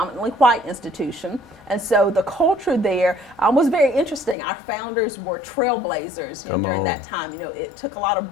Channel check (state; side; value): drops out; right; at 4.4 s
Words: white institution. And so the culture there was very interesting. Our founders were trailblazers during that time. It took a lot